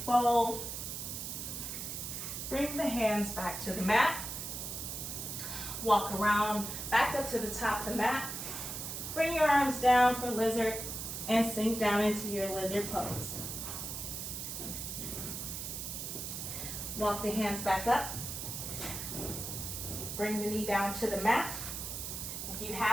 fold. Bring the hands back to the mat. Walk around, back up to the top of the mat. Bring your arms down for lizard and sink down into your lizard pose. Walk the hands back up. Bring the knee down to the mat. If you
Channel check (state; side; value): noise; right; hiss, 5 dB below the sound